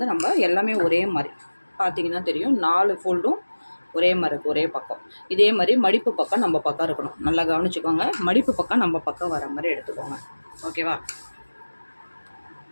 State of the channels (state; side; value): inverted; both; correlation -1.00